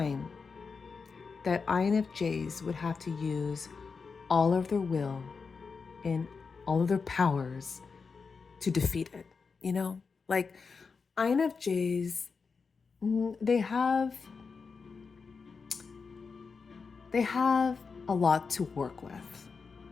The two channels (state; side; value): quieter; right; 5.1 dB